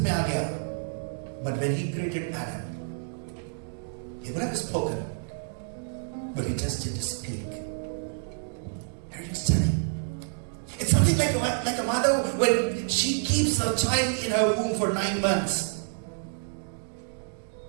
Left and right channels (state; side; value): silent; left; digital silence